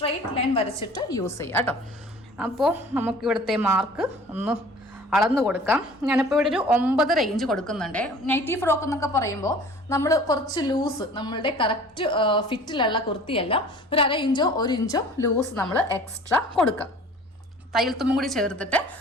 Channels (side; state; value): both; normal; correlation 0.47